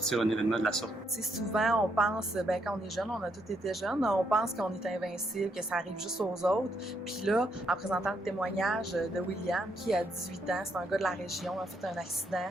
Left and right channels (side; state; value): both; normal; correlation 0.76